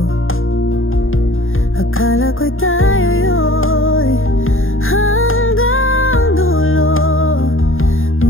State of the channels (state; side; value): late; right; 0.60 ms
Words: Akala ko'y tayo'y hanggang dulo,